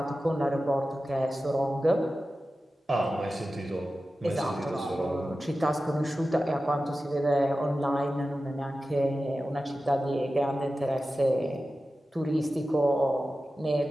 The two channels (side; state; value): both; normal; correlation 0.94